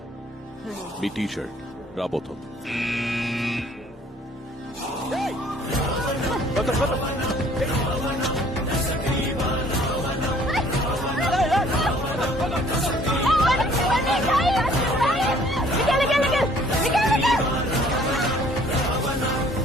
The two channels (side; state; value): both; normal; correlation 0.57